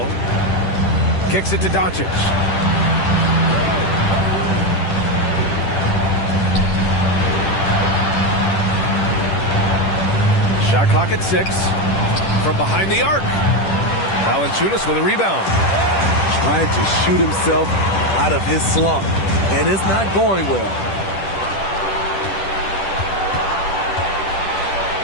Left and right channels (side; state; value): right; late; 10 ms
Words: Kicks it to Doncic. Shot clock at 6. From behind the arc. Valanciunas with a rebound. Trying to shoot himself out of his slump. And it's not going well.